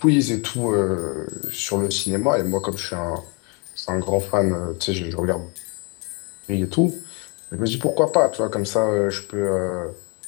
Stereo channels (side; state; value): right; quieter; 32.8 dB